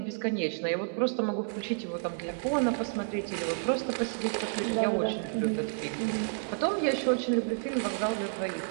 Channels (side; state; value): left; silent; digital silence